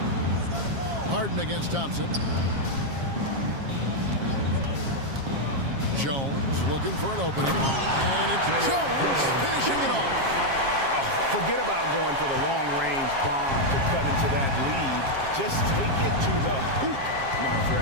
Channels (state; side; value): late; left; 7.4 ms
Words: Harden against Thompson. Jones looking for an opening. And it's Jones finishing it off. Forget about going for the long-range bomb to cut into that lead. Just take it to the hoop, my